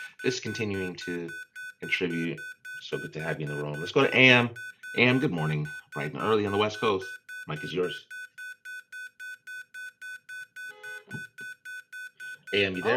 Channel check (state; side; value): identical; both; correlation 1.00